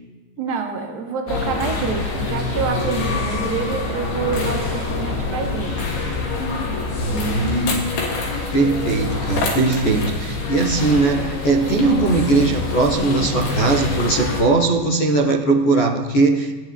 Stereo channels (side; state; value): right; late; 15 ms